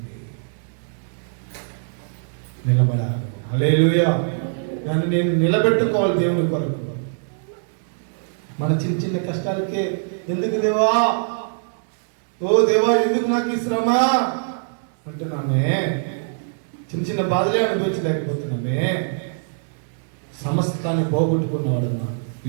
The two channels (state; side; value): silent; left; 63 dB below the other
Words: నిలబడాలి. హల్లెలూయా. దాన్ని నేను నిలబెట్టుకోవాలి దేవుని కొరకు. మన చిన్న కష్టాలకే ఎందుకు దేవా, ఓ దేవా ఎందుకు నాకు ఈ శ్రమ అంటున్నామే, చిన్న బాధలే అనుభవించలేకపోతున్నామే. సమస్తాన్ని పోగొట్టుకున్నవాడు